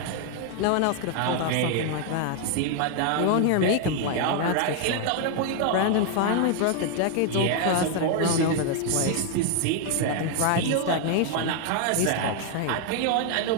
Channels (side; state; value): both; different; correlation 0.01